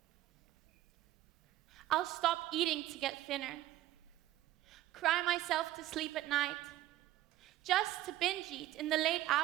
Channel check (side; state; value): left; quieter; 14.9 dB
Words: I'll stop eating to get thinner. Cry myself to sleep at night, just to binge eat in the late